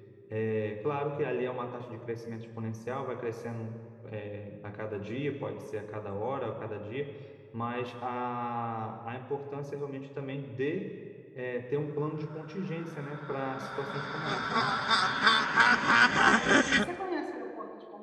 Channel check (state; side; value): identical; both; correlation 1.00